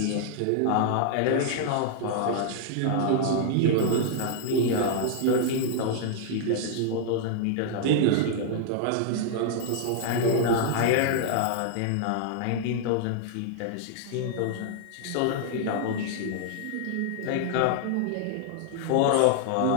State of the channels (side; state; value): both; different; correlation -0.01